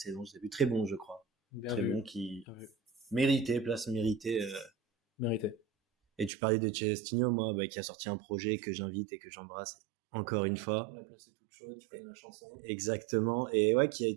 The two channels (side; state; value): left; drops out; at 6.3 s